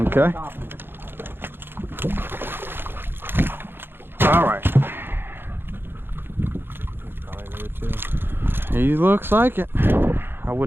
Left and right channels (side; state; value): left; late; 0.10 ms